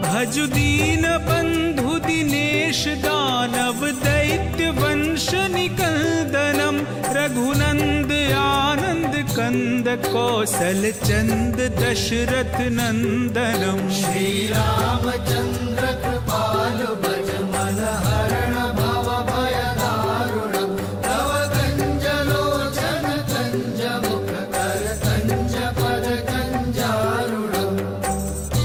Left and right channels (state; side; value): identical; both; correlation 1.00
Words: भजु दीन बंधु दिनेश दानव दैत्य वंश निकंदनम रघुनंद आनंद कंद कौशल चंद दशरथ नंदनम। श्री रामचंद्र कृपालु भज मन हरण भव भय दारुणम् तव कंज लोचन कंज मुख कर कंज पद कंजारुणम्।